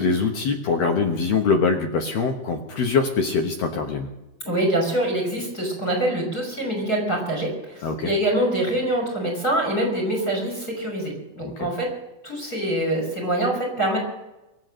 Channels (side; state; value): right; late; 8.2 ms